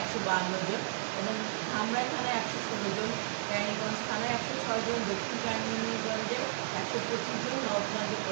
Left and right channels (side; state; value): left; silent; 56 dB below the other